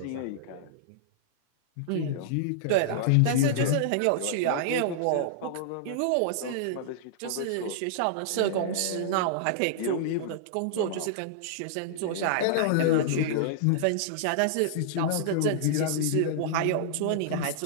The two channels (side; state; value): both; different; correlation -0.01